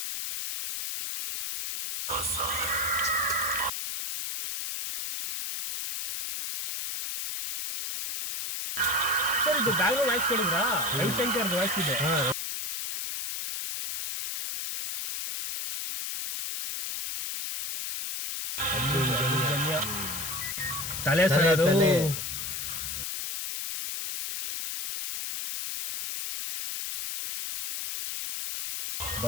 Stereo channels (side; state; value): left; noise; hiss, 4 dB below the sound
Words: Sir ಇದು ಬ್ಯಾಕ್ಗ್ರೌಂಡ್ ವಾಯ್ಸ್ ಕೇಳಿದ್ರಾ? ರವಿಶಂಕರ್ ವಾಯ್ಸ್ ಇದೆ. ತಲೆ ಸರೋದು